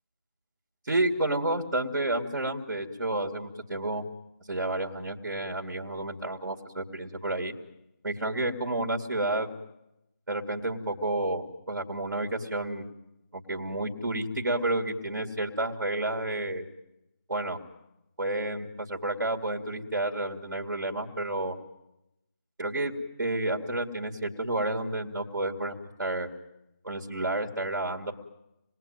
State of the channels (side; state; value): both; inverted; correlation -0.50